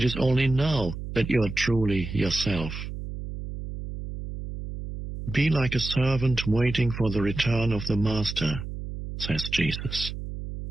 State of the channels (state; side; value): noise; right; hum, 8 dB below the sound